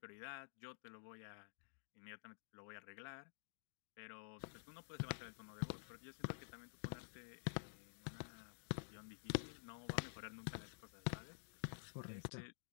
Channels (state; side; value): silent; right; digital silence